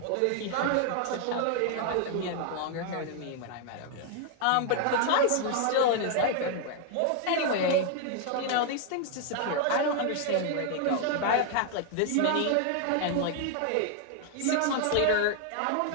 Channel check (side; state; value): both; different; correlation 0.00